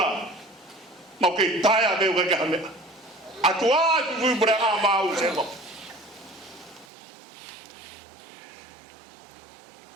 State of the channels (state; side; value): drops out; left; at 6.9 s